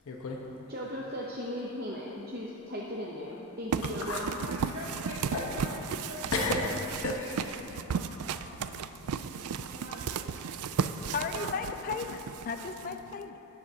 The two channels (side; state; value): both; normal; correlation 0.14